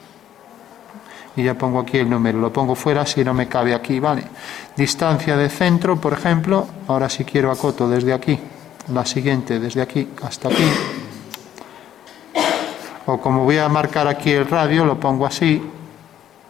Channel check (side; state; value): right; quieter; 10.9 dB